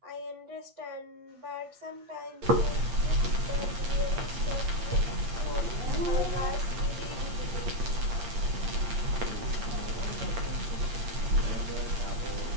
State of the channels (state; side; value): late; left; 8.6 ms